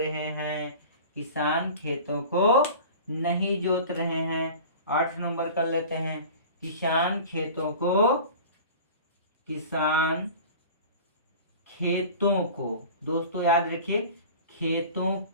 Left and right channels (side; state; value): both; inverted; correlation -0.39